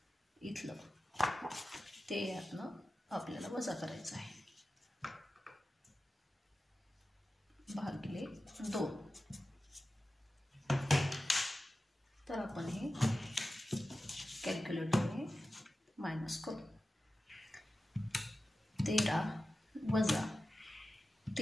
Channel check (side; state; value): both; normal; correlation 0.94